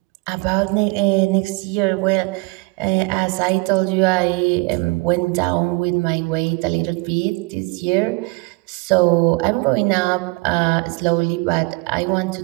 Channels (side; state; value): left; quieter; 27.5 dB